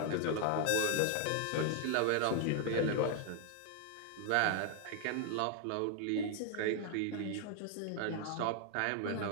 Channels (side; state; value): both; different; correlation 0.00